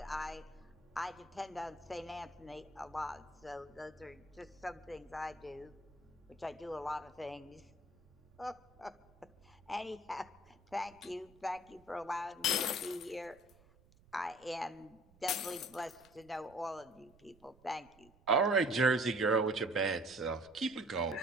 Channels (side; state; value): right; noise; rumble, 27 dB below the sound